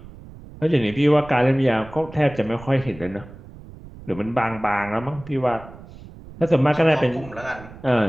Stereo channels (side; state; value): right; noise; rumble, 18 dB below the sound